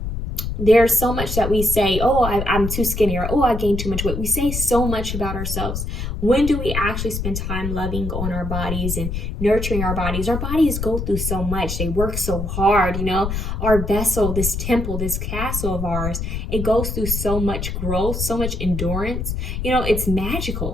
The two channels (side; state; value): left; noise; rumble, 4 dB below the sound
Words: There's so much that we say, oh, I'm too skinny, or, oh, I gained too much weight. We say so much about ourselves. When do we actually spend time loving on our bodies and nurturing our bodies? Our bodies go through so much. They work so hard, you know. Our vessel, this temple, this castle of ours, it goes through so much growth, so much endurance. You know, it's